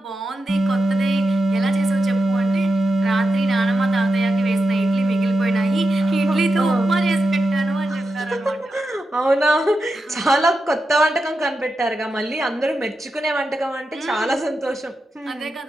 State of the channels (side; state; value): both; normal; correlation 0.89